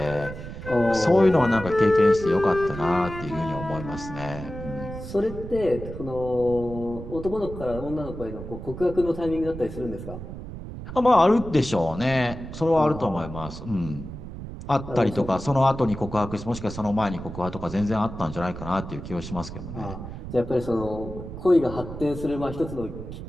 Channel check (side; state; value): right; noise; rumble, 10 dB below the sound